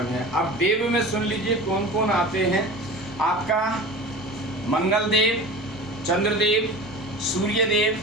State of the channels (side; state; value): both; normal; correlation 0.35